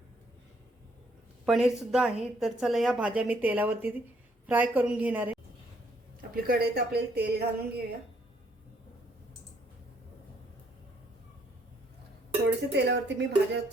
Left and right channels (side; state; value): both; normal; correlation 0.69